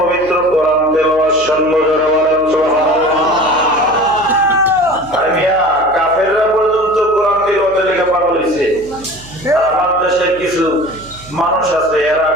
কোরআন তেলাওয়াত শুনবো। যারা বলেন সুবহানাল্লাহ। আর মিয়া কাফেররা পর্যন্ত কোরআন তেলাওয়াতের লেগে পাগল হইছে। আমার দেশের কিছু মানুষ আছে এরা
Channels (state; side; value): noise; right; hum, 21 dB below the sound